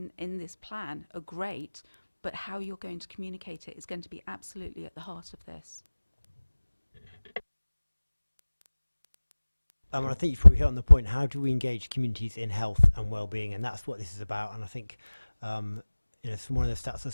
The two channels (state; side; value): inverted; both; correlation -1.00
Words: this plan are great, but how you're going to communicate it is going to be absolutely at the heart of this. I think you've probably hit on the point. How do we engage communities in health and well-being? And that's what this is about. And I think, you know, from one of the stats I